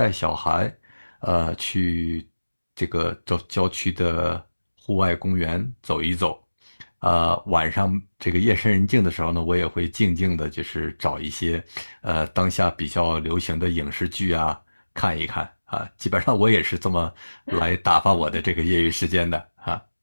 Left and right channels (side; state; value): both; inverted; correlation -1.00